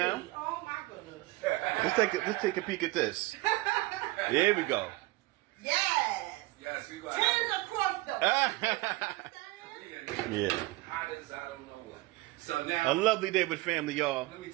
now. Oh my goodness. Let's take a peek at this. Here we go. Yes. Yes, you got Tens across the. Yeah. hot as I don't know what. So now, A lovely day with family, y'all. let me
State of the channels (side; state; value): left; quieter; 20.3 dB